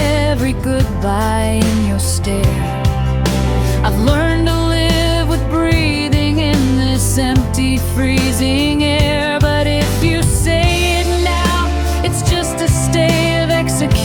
goodbye in your stare. I've learned to live with breathing in this empty, freezing air. But if you say it now, it's just a stay of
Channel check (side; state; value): both; identical; correlation 1.00